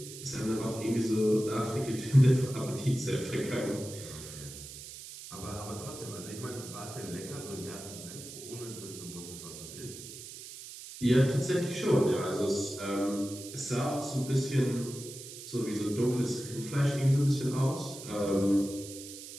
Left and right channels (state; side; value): noise; right; hiss, 13 dB below the sound